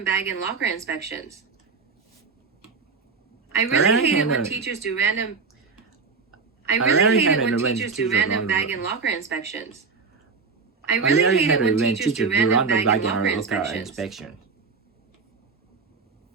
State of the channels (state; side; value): quieter; left; 4.9 dB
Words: bag and locker inspections. I really hate it when teachers do random bag and locker inspections. I really hate it when teachers do random bag and locker inspections.